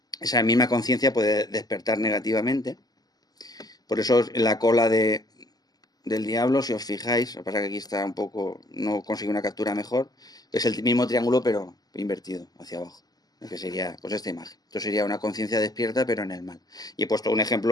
esa misma conciencia puede despertar negativamente. Por eso en la cola del diablo, si os fijáis, lo que pasa es que aquí está un poco, no consigo una captura mejor, es el mismo triángulo pero invertido hacia abajo, que sería pues esta imagen. Esto sería una conciencia despierta pero en el mal. Y he puesto un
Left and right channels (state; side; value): late; right; 0.19 ms